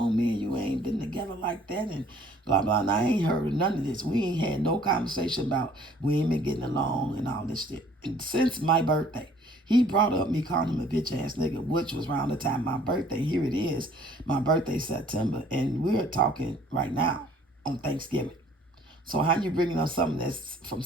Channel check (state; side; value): normal; both; correlation 0.56